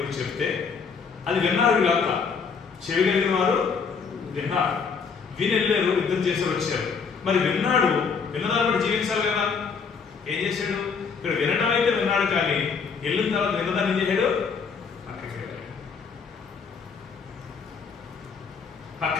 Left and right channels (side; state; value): right; quieter; 5.7 dB